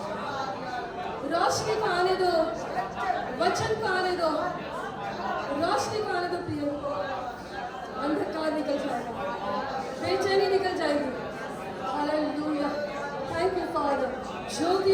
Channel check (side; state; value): both; identical; correlation 1.00